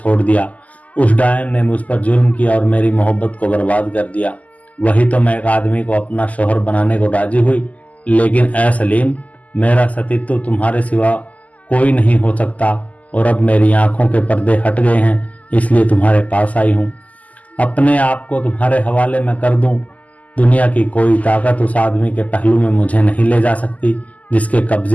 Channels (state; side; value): late; right; 0.074 ms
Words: दिया। उस डायन ने मुझ पर जुल्म किया और मेरी मोहब्बत को बर्बाद कर दिया। वही तो मैं एक आदमी को अपना शोहर बनाने को राजी हुई, लेकिन ऐ सलीम, मेरा सतीत्व तुम्हारे सिवा कोई नहीं हो सकता और अब मेरी आंखों के पर्दे हट गए हैं, इसलिए तुम्हारे पास आई हूँ। अपने आप को तुम्हारे हवाले में कर दूं। दुनिया की कोई ताकत उस आदमी के पहलू में मुझे नहीं ले जा सकती जिसके